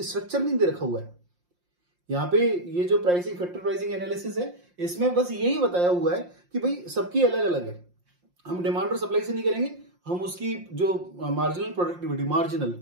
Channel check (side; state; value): left; late; 5.7 ms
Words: स्ट्रक्चर नहीं दे रखा हुआ है यहाँ पे। ये जो प्राइसिंग फैक्टर प्राइसिंग एनालिसिस है, इसमें बस यही बताया हुआ है कि भाई सबकी अलग अलग है। हम डिमांड और सप्लाई से नहीं करेंगे, हम उसकी जो मार्जिनल